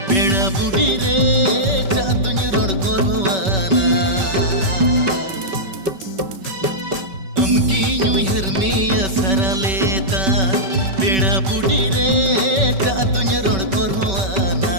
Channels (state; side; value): late; left; 5.2 ms